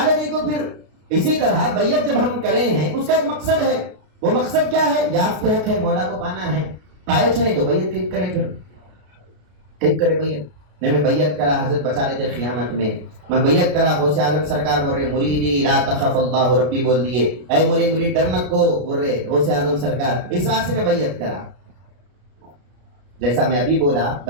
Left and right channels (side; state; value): left; late; 33 ms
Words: گئی کو پھر۔ اسی طرح بیعت جب ہم کرے ہیں، اس کا ایک مقصد ہے، وہ مقصد کیا ہے؟ یافت حق ہے، مولا کو پانا ہے۔ پائے چھنے تو بیعت کیوں کرے؟ پھر کیوں کرے بیعت؟ نہیں میں بیعت کرا، حضرت بچا لیتے قیامت میں بیعت کرا، غوث اعظم سرکار بول رہے مریدی لا تخف اللہ ربی بول دیے، اے مرید ڈرنا کو بول رہے غوث اعظم سرکار، اس واسطے میں بیعت کرا۔ جیسا میں ابھی بولا